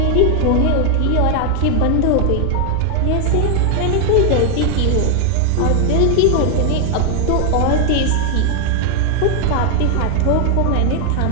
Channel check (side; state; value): both; different; correlation 0.00